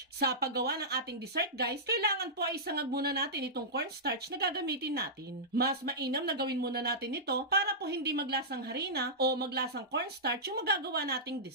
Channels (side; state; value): both; normal; correlation -0.14